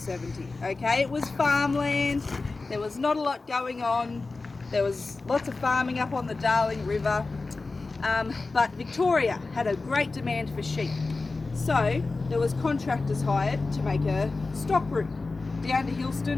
okay? It was farmland, there was not a lot going on, there was lots of farming up on the Darling River, but Victoria had a great demand for sheep. So there was contractors hired to make a stock route down to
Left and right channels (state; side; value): quieter; right; 3.7 dB